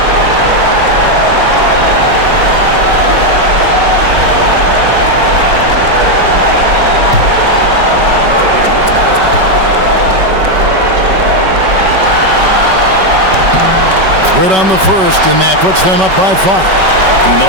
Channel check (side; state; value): left; late; 5.3 ms